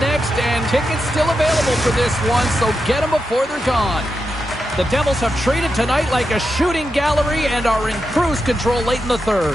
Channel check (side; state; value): both; normal; correlation 0.87